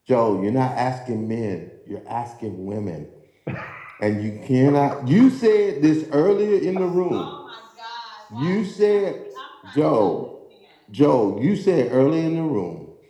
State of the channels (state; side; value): identical; both; correlation 1.00